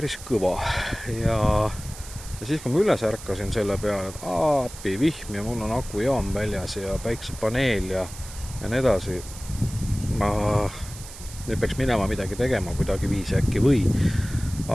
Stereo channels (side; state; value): right; noise; hiss, 15 dB below the sound